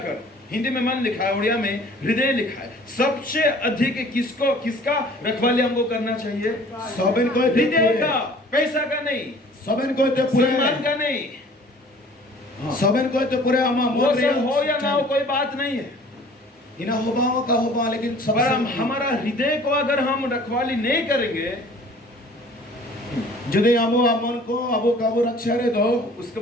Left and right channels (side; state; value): both; normal; correlation 0.50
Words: हिंदी में मन लिखा है, उड़िया में हृदय लिखा है। सबसे अधिक किसका रखवाली हमको करना चाहिए? सबन को हृदय का, पैसा का नहीं, सबन को तो पूरे सम्मान का नहीं। सबन को तो पूरे अमा वो सब हो या ना हो कोई बात नहीं है। इना होबाओ का होबा, लेकिन सबसे हमारा हृदय को अगर हम रखवाली नहीं करेंगे, यदि अबो मन को अबो काबू रक्षा रे दो। उसके